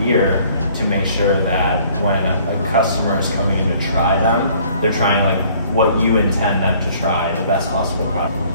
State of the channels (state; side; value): inverted; both; correlation -0.57